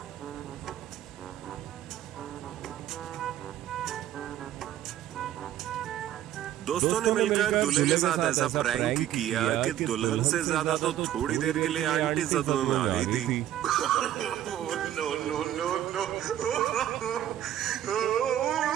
दोस्तों ने मिलकर दूल्हे के साथ ऐसा प्रैंक किया कि दुल्हन से ज्यादा तो थोड़ी देर के लिए आंटी सदमे में आ गई थी। No no no no.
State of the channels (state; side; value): quieter; left; 11.9 dB